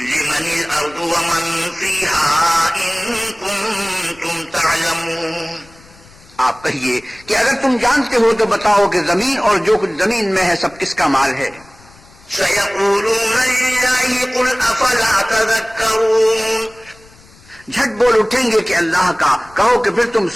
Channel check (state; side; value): noise; left; rumble, 25 dB below the sound